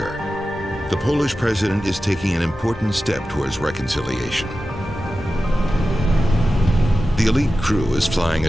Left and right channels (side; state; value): both; normal; correlation 0.93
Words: the Polish president is taking an important step towards reconciliation. The elite crew is flying